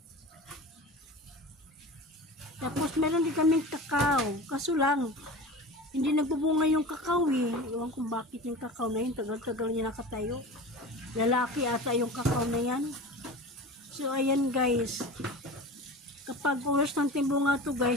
Tapos meron din kaming kakao. Kaso lang, hindi nagbubunga yung kakao eh. Iwan kung bakit yung kakao na yun, tagal-tagal niya nakatayo. Lalaki ata yung kakao na yan. So ayan guys. Kapag oras ng timbunga to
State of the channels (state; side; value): normal; both; correlation 0.34